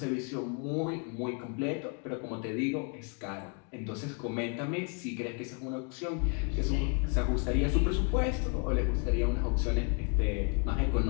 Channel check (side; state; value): right; quieter; 35.6 dB